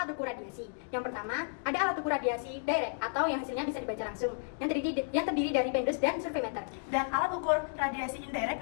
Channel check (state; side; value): silent; right; digital silence